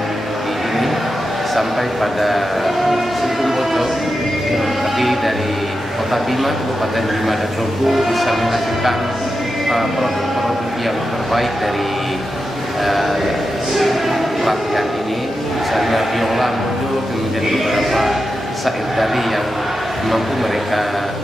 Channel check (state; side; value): normal; both; correlation 0.89